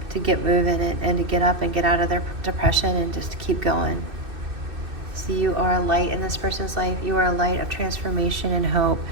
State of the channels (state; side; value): late; left; 2.6 ms